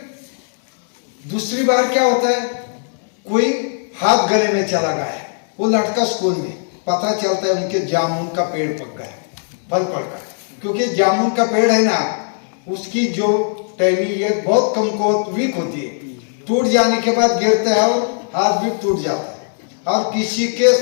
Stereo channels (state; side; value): silent; right; digital silence